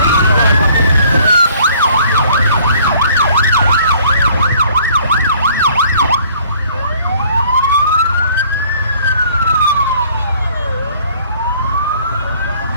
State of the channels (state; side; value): inverted; both; correlation -0.57